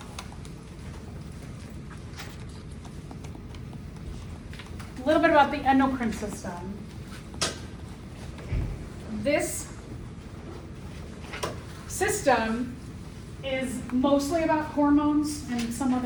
A little bit about the endocrine system. This system is mostly about hormones and some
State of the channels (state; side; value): identical; both; correlation 1.00